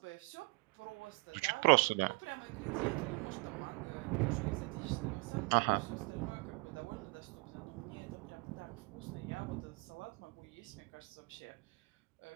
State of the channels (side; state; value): left; quieter; 29.4 dB